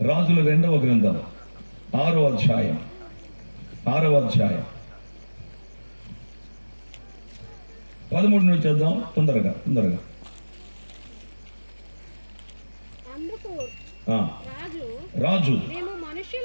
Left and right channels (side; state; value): both; inverted; correlation -1.00